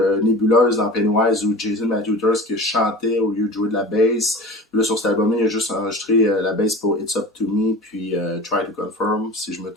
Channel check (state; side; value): normal; both; correlation 0.36